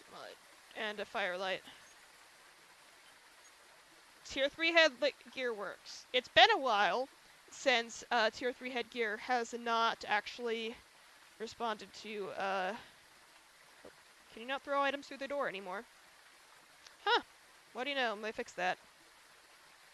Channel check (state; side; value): identical; both; correlation 1.00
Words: firelight. Tier 3 headgear works. It's been a while since Tier 3 headgear has not actually responded to, can you not throw items through the door anymore? Huh. What do you know? They fixed that.